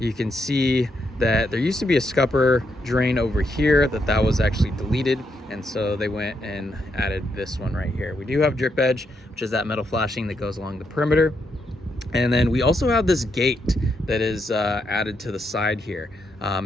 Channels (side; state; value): both; normal; correlation 0.80